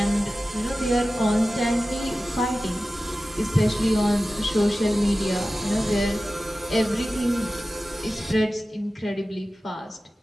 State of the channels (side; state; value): both; normal; correlation 0.95